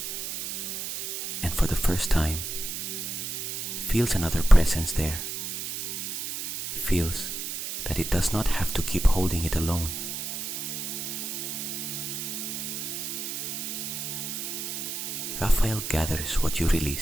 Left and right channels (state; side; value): noise; right; hiss, 5 dB below the sound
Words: and for the first time feels another presence there. Feels that it does not have to keep holding it alone. Raphael gathers what you